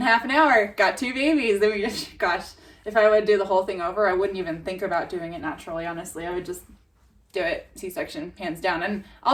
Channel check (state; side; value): identical; both; correlation 1.00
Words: half an hour, got 2 babies. Then gosh, if I would do the whole thing over, I wouldn't even think about doing it naturally, honestly. I would just do it C-section, hands down. And